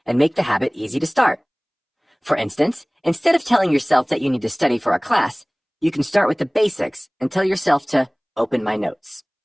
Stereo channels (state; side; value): identical; both; correlation 1.00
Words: and make the habit easy to start. For instance, instead of telling yourself that you need to study for a class, you can start with the basics and tell yourself to open my notes.